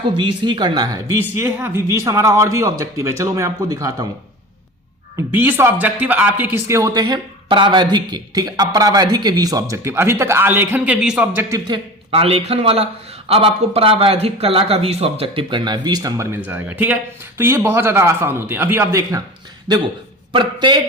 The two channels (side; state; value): both; normal; correlation 0.34